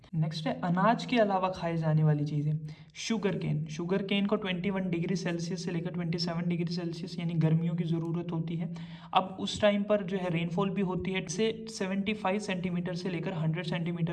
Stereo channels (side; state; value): both; identical; correlation 1.00